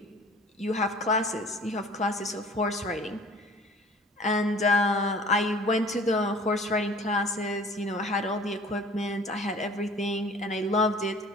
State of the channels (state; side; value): normal; both; correlation 0.48